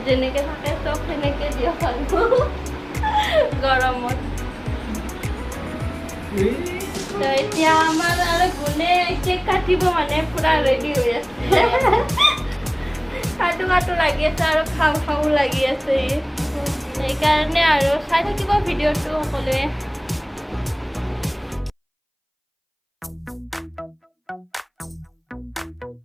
যেনেকৈ থাকে চব সেনেকৈ দিয়ক আৰু গৰমত তো এতিয়া আমাৰ আৰু গুণে কেক কাটিব মানে পুৰা ৰেডি হৈ আছে কাটো লাগি আছে আৰু খাওঁ লাগি আছে সেইকাৰণে আৰু চাই থাকিব ভিডিঅ'টো সকলোৱে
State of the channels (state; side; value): identical; both; correlation 1.00